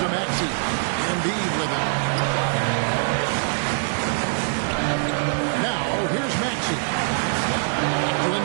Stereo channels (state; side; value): silent; left; digital silence